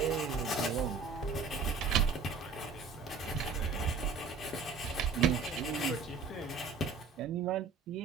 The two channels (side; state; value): left; quieter; 4.9 dB